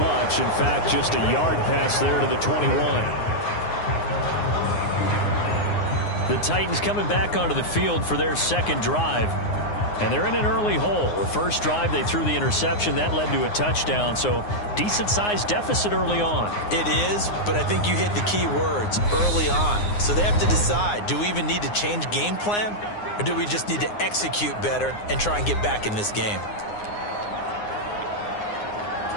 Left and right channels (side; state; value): right; late; 9.7 ms